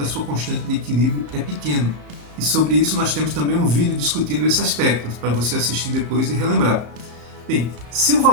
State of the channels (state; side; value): late; left; 33 ms